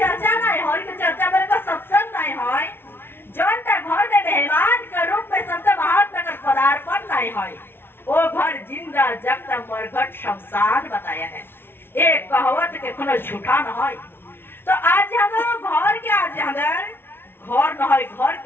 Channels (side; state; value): right; late; 0.11 ms